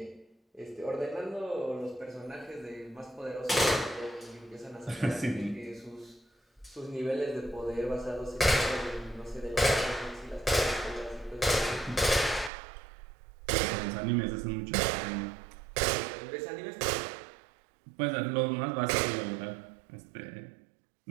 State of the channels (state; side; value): drops out; left; at 12.5 s